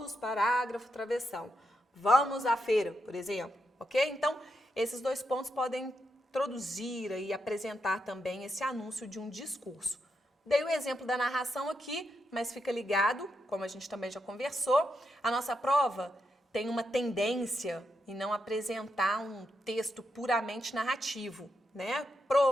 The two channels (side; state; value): both; normal; correlation 0.83